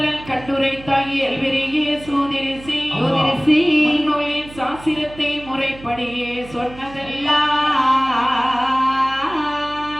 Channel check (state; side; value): noise; right; hum, 18 dB below the sound